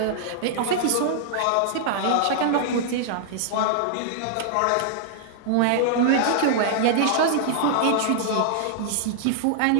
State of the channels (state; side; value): different; both; correlation -0.01